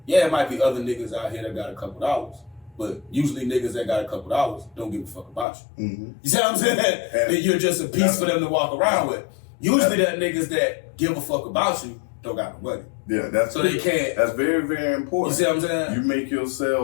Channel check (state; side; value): drops out; right; at 5.5 s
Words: yeah, it might be other niggas out here that got a couple dollars. But usually niggas that got a couple dollars don't give a fuck about you. Mm-hmm. You see what I'm saying? That you're just a piece for them to walk around with. Usually that niggas that give a fuck about you don't got no money. Yeah, that's so they can't. That's very, very important. You see what I'm saying? You make